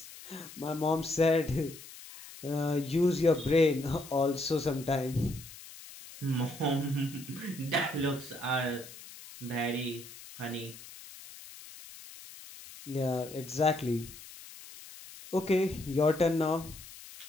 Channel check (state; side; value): noise; left; hiss, 16 dB below the sound